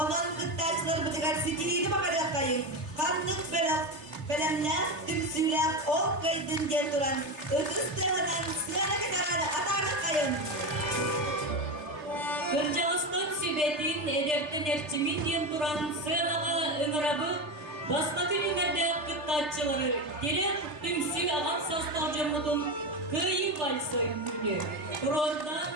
gıttaçılar bıdıgar sitiriydi bakarık kayın. Kanlık berak, belemler, tümsüylek, ol kaydın gel duran. Ötüs tığınan sığana ketararı atarlık kayın. Kırcağızdan sübetin ederten erçimin diyen duran sığınağa ıngırabı Басқа күнімерді қыттатчылары керек түмсі ағам састалжымыдың күйі вальсойын күні. Тұрорда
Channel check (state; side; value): late; left; 3.3 ms